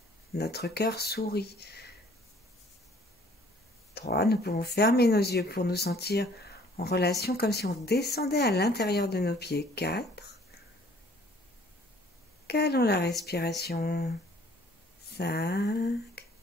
notre cœur sourit. 3, nous pouvons fermer nos yeux pour nous sentir en relation comme si on descendait à l'intérieur de nos pieds. 4, calons la respiration. 5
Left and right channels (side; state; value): both; normal; correlation 0.57